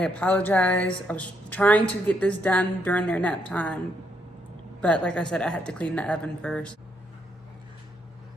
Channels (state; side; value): normal; both; correlation 0.75